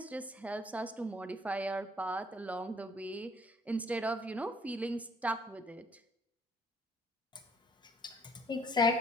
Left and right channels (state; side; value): normal; both; correlation 0.61